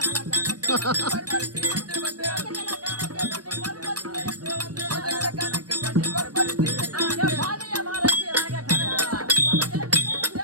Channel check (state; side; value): late; left; 0.69 ms